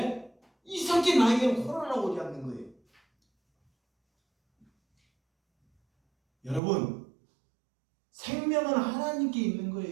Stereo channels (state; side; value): drops out; left; at 6.6 s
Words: 이상하게 나에게는 코로나가 오지 않는 거예요. 여러분, 생명은 하나님께 있는